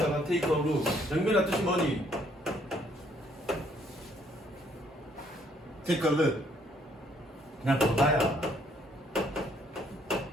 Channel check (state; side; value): normal; both; correlation 0.66